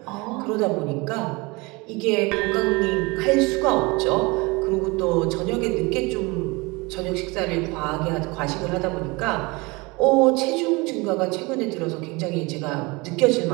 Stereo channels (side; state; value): left; quieter; 25.5 dB